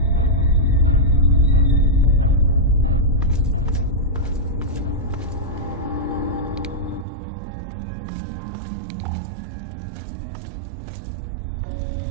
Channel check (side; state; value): left; drops out; at 7.1 s